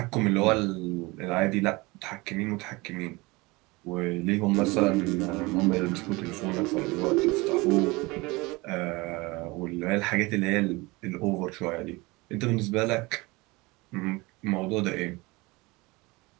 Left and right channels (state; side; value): quieter; left; 23.6 dB